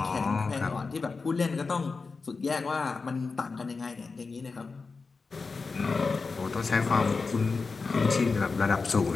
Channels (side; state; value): right; quieter; 4.4 dB